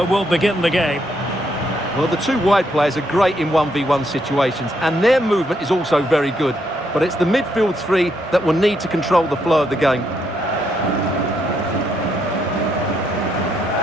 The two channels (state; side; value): normal; both; correlation 0.76